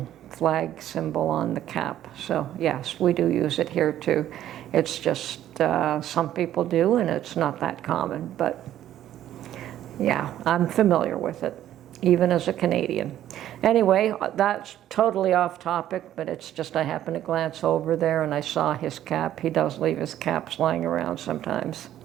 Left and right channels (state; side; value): quieter; left; 12.1 dB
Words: flag symbol on the cap. So yes, we do use it here too. It's just some people do, and it's not that common, but yeah, I'm familiar with it, even as a Canadian. Anyway, that's totally off topic, but it's just I happened to glance over there and I saw his cap. He does leave his caps lying around sometimes.